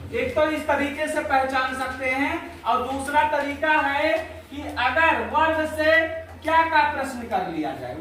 एक तो इस तरीके से पहचान सकते हैं और दूसरा तरीका है कि अगर वर्ब से क्या का प्रश्न कर लिया जाए,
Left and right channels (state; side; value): identical; both; correlation 1.00